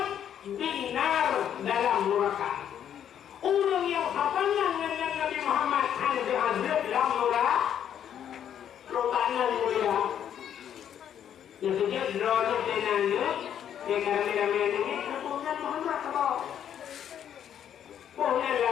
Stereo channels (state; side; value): quieter; right; 9.5 dB